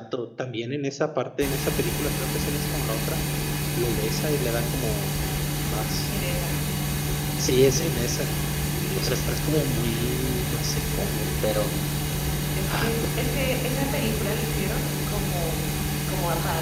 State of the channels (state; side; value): identical; both; correlation 1.00